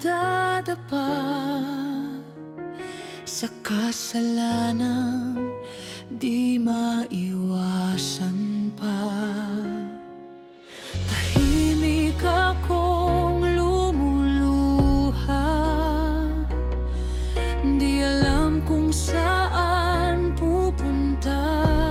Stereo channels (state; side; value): identical; both; correlation 1.00